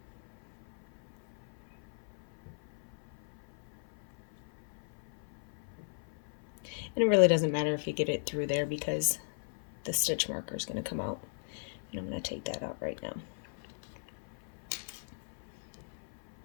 And it really doesn't matter if you get it through there because the stitch marker is going to come out. And I'm going to take that out right now.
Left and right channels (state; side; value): silent; right; 53 dB below the other